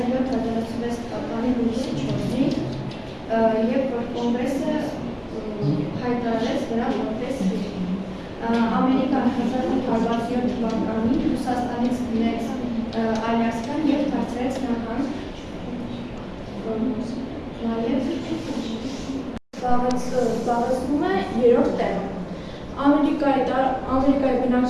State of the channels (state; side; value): identical; both; correlation 1.00